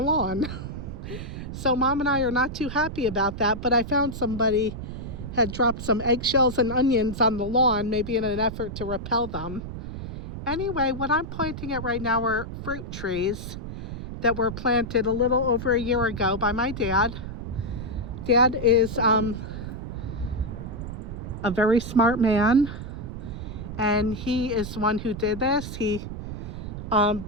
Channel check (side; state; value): right; noise; rumble, 8 dB below the sound